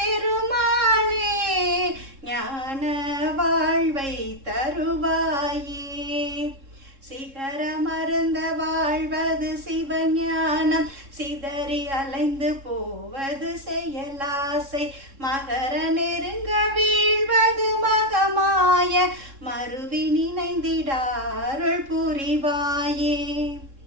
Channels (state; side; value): late; left; 3.7 ms